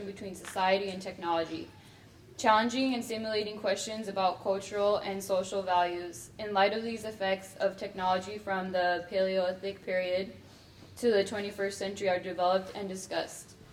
between society and technology, challenging and stimulating questions about cultural and social values. In light of these effects of technology from the Paleolithic period to the 21st century are developed and discussed.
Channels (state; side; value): identical; both; correlation 1.00